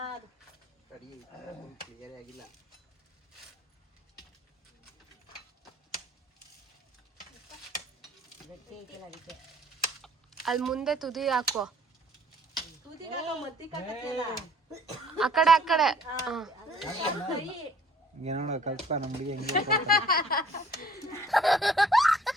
ಅಲ್ಲಿ ಮುಂದೆ ತುದಿ ಹಾಕೋ. ಆ ಕಡೆ ಏನೋಡ ಕಲ್ಪ ನಮ್ಮ ಹುಡುಗಿ ಹೆಂಗೆ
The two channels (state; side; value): normal; both; correlation 0.56